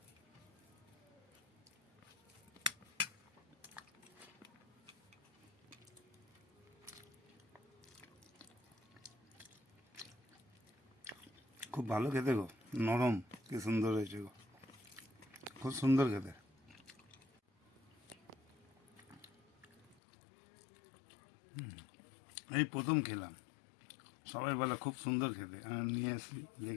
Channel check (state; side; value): drops out; right; at 20.0 s